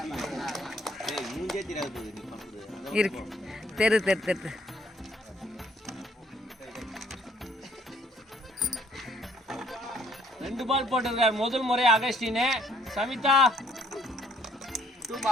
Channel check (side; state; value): both; normal; correlation 0.64